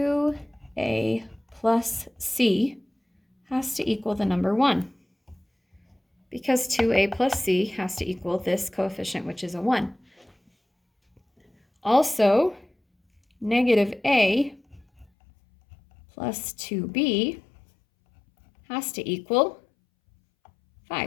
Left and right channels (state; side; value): drops out; right; at 15.1 s